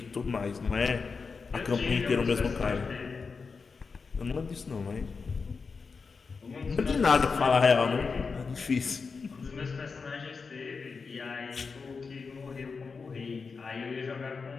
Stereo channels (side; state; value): right; quieter; 4.9 dB